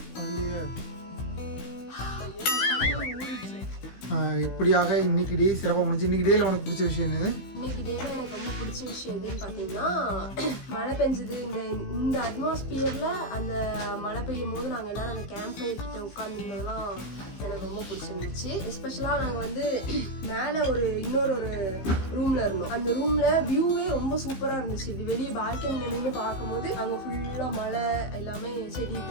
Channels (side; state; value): right; late; 16 ms